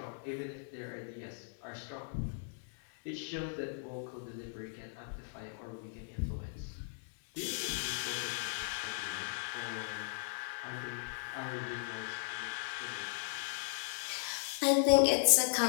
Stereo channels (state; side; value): silent; right; 53 dB below the other